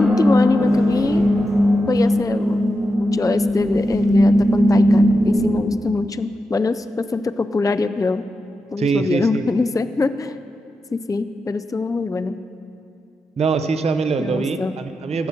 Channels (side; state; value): both; normal; correlation 0.89